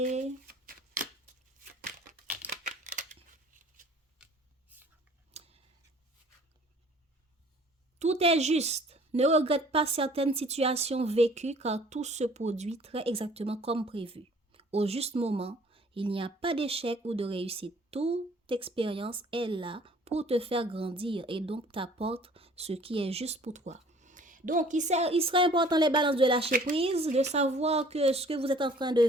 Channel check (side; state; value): both; normal; correlation 0.53